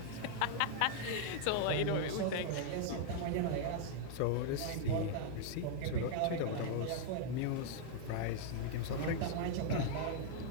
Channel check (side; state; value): both; different; correlation -0.01